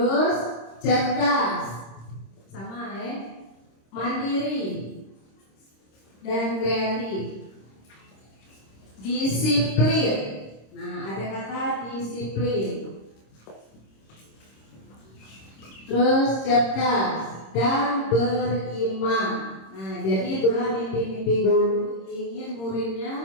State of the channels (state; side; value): late; right; 26 ms